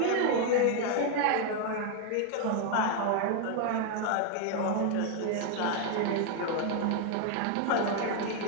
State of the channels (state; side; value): different; both; correlation 0.01